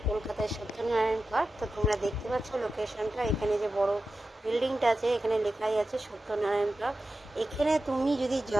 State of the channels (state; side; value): normal; both; correlation 0.92